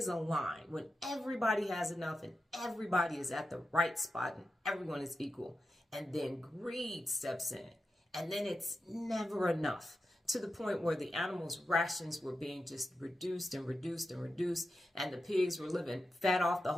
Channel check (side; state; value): both; normal; correlation 0.90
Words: a line when everybody has enough and everybody is at the right spot and everyone is equal. And then greed steps in, and then it's never enough, to the point where the animals' rations were being just reduced and reduced and reduced, and the pigs were living fat off the